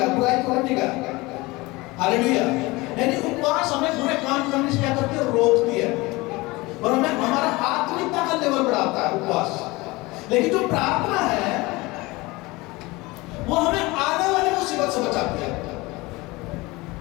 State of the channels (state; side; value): quieter; right; 22.4 dB